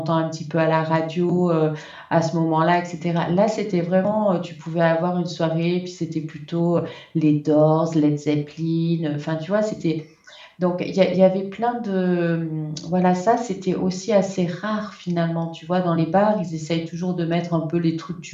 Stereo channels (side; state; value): both; identical; correlation 1.00